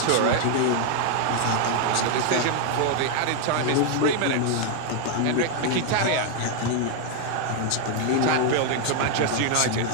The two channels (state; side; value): different; both; correlation 0.00